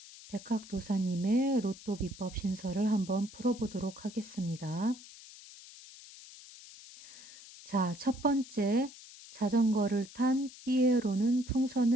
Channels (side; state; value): left; noise; hiss, 18 dB below the sound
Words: 백학도사님의 로또 비법 신설을 한번 풀어보도록 하겠습니다. 자, 첫 번째, 자전거를 탄 삐에로는